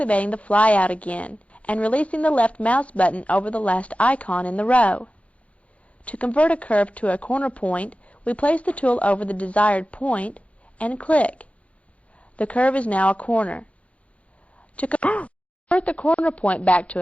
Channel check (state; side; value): late; right; 0.064 ms